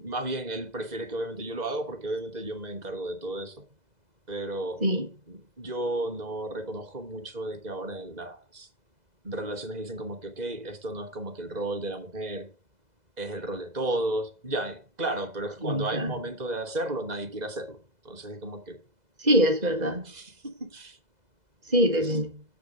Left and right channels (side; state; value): left; late; 2.0 ms